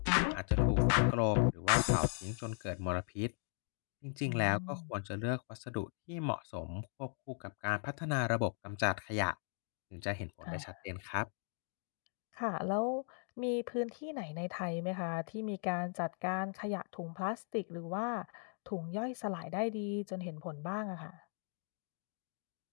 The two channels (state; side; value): silent; right; 52 dB below the other